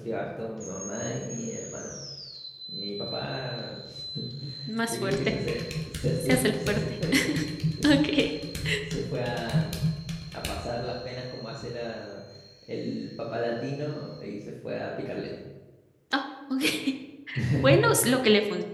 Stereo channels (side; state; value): both; identical; correlation 1.00